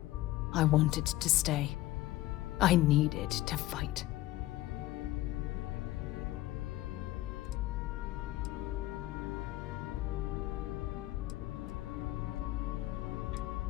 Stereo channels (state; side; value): quieter; right; 16.4 dB